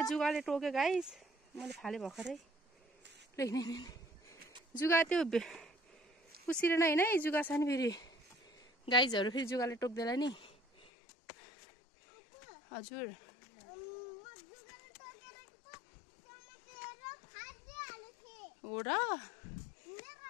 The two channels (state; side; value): drops out; right; at 10.9 s